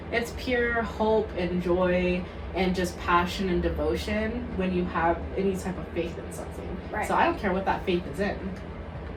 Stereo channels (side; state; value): both; identical; correlation 1.00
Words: It's pure hope and joy and just passion and devotion when you have any type of faith in something. Right. So I don't care what that faith is in.